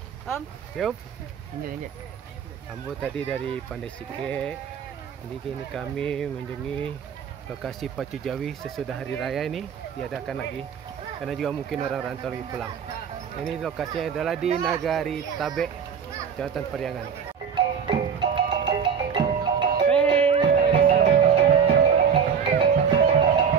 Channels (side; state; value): left; quieter; 7.0 dB